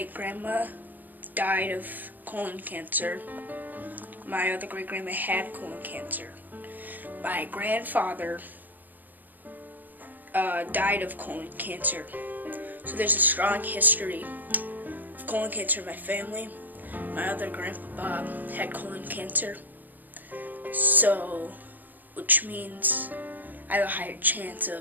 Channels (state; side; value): late; left; 0.085 ms